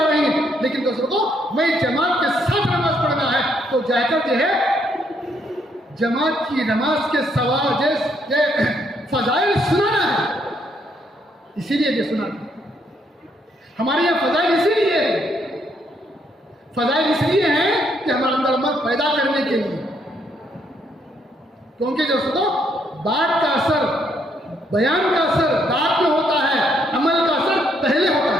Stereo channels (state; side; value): normal; both; correlation 0.72